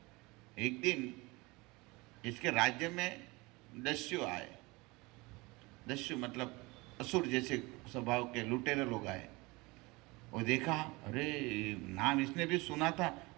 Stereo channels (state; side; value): quieter; left; 24.0 dB